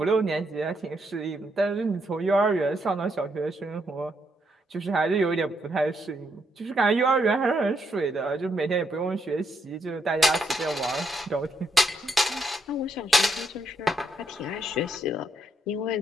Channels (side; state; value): both; normal; correlation 0.77